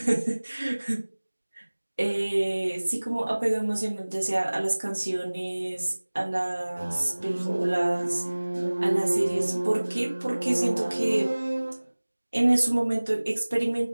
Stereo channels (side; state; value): both; inverted; correlation -1.00